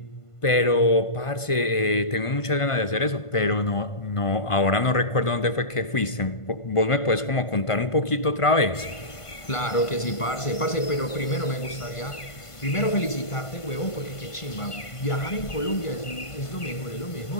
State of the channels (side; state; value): right; late; 1.5 ms